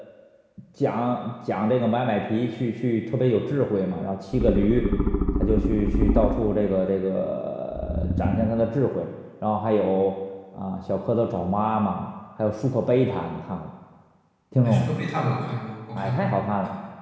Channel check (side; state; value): both; identical; correlation 1.00